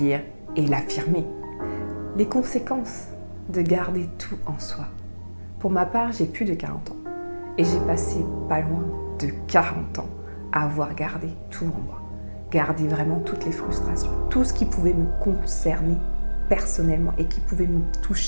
et l'affirmer. Les conséquences de garder tout en soi. Pour ma part, j'ai plus de 40 ans et j'ai passé pas loin de 40 ans à avoir gardé tout en moi. Garder vraiment toutes les frustrations, tout ce qui pouvait me concerner personnellement et qui pouvait me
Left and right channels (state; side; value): inverted; both; correlation -1.00